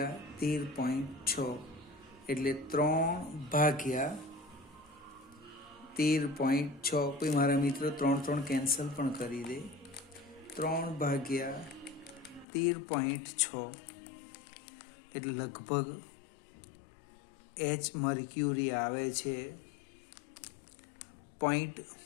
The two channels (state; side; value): drops out; right; at 12.5 s